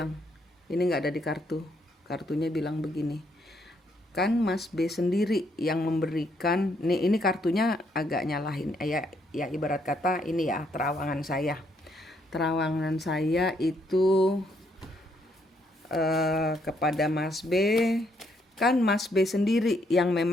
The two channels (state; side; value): normal; both; correlation 0.72